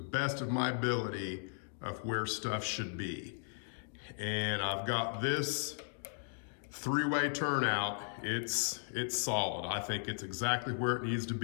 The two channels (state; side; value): silent; right; digital silence